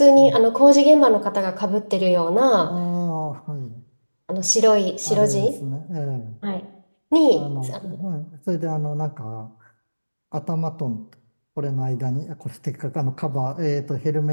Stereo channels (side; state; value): both; inverted; correlation -1.00